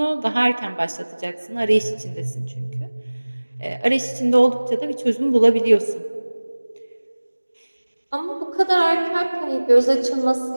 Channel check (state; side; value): inverted; both; correlation -1.00